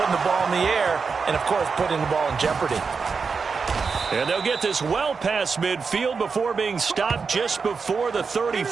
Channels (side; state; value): left; quieter; 5.2 dB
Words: the ball in the air and, of course, putting the ball in jeopardy. And they'll get this well past midfield before being stopped just before the